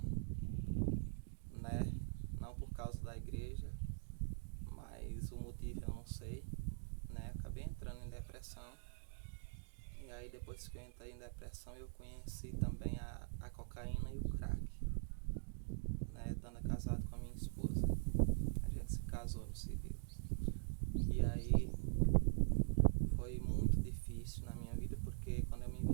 né? Não por causa da igreja, mas o motivo eu não sei, né? Acabei entrando em depressão. E aí depois que eu entrei em depressão eu conheci também a cocaína e o crack, né? Estando casado com a minha esposa. A gente se casou no civil. E aí foi muito difícil na minha vida porque quando eu me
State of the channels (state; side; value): silent; left; digital silence